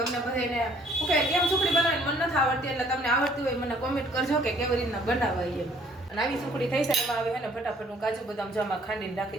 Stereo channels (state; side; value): normal; both; correlation 0.60